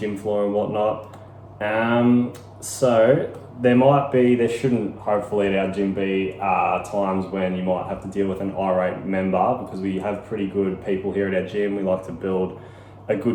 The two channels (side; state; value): both; identical; correlation 1.00